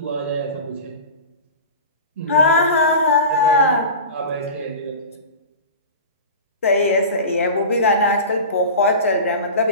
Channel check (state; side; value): inverted; both; correlation -0.32